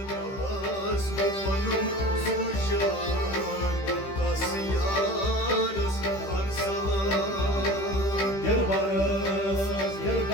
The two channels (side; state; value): right; late; 15 ms